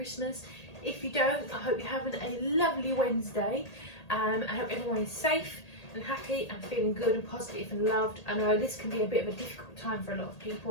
If you don't, I hope you're having a lovely Wednesday. I hope everyone is safe and happy and feeling good and positive and loved. I know this can be a bit of a difficult time for a lot of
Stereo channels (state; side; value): late; right; 1.8 ms